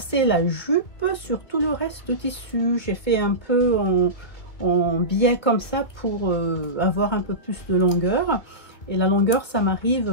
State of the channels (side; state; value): right; late; 2.4 ms